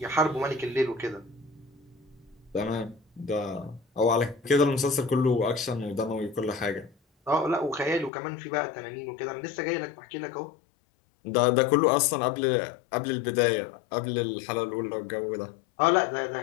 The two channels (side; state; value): right; drops out; at 8.1 s